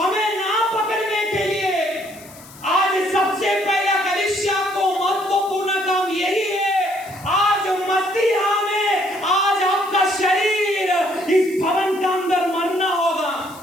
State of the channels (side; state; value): left; noise; hiss, 20 dB below the sound